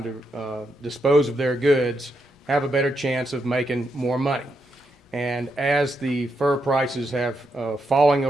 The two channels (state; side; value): normal; both; correlation 0.82